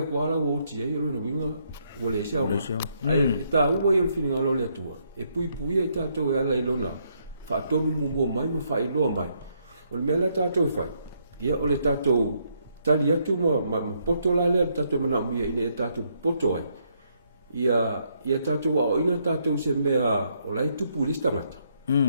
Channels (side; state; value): both; inverted; correlation -0.73